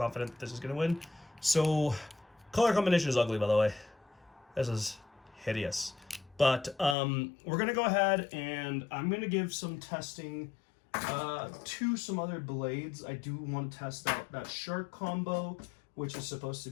that this is going to win. So color combination is ugly, by the way. This is hideous. But we're going to go ahead and I'm going to give some testing to some other blades. I do want to test out that Shark combo, which is supposed to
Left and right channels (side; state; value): right; drops out; at 7.0 s